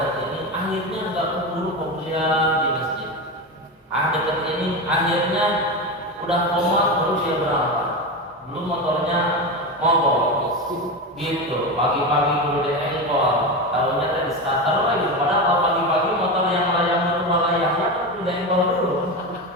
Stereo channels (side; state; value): both; normal; correlation 0.19